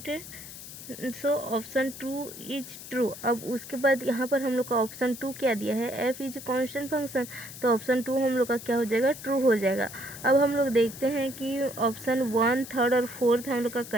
so option 2 is true. अब उसके बाद यहाँ पर हम लोग का ऑप्शन 2 क्या दिया है, f इज कांस्टेंट फंक्शन, तो ऑप्शन 2 हम लोग का क्या हो जाएगा, ट्रू हो जाएगा। अब हम लोग देखते हैं कि ऑप्शन 1, 3 और 4 हम लोग का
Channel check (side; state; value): left; noise; hiss, 13 dB below the sound